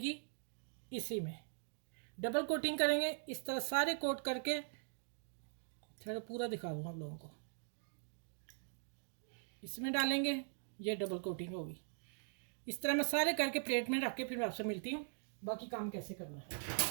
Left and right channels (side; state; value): left; silent; digital silence